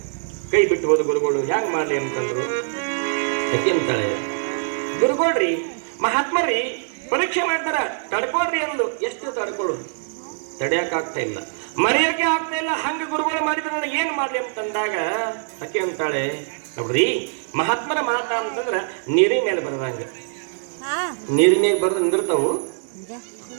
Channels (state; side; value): silent; left; digital silence